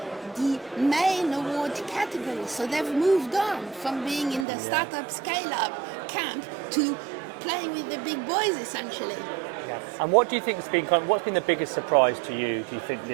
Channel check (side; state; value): left; drops out; at 4.5 s